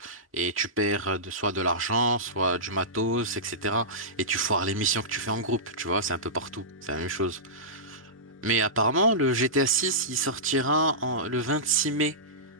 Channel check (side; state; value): both; normal; correlation -0.19